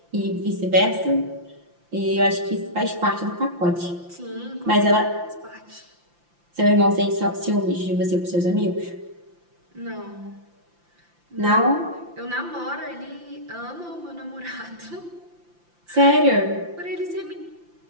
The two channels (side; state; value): left; late; 5.8 ms